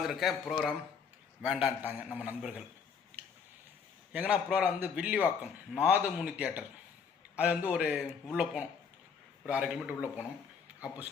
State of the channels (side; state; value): right; quieter; 6.4 dB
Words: ப்ரோக்ராம் வேண்டான்ட்டாங்க நம்ம நண்பர்கள். எங்கன்னா ப்ரோக்ராம் வந்து வில்லிவாக்கம் நாதமுனி தியேட்டர். அது வந்து ஒரு உள்ளே போனோம், ஒரு 1/2 கிலோமீட்டர் உள்ளே போனோம்.